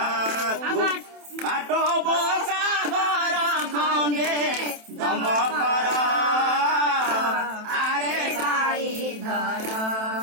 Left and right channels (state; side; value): late; left; 27 ms